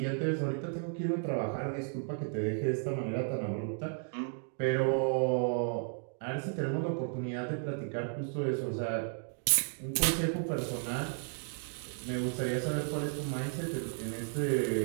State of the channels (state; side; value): silent; left; 55 dB below the other